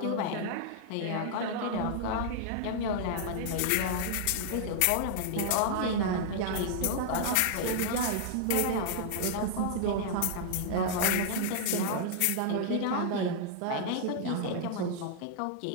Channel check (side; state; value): both; different; correlation -0.01